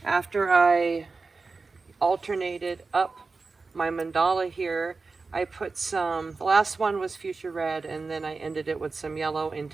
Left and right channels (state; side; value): quieter; left; 4.1 dB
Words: After I alternated up my mandala here, I put some, the last one was fuchsia red, and then I ended it with some yellow and